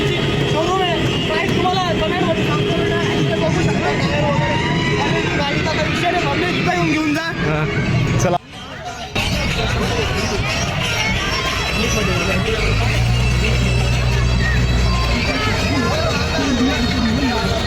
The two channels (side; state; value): both; identical; correlation 1.00